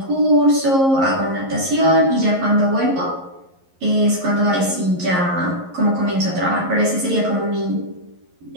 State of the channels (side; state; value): left; late; 11 ms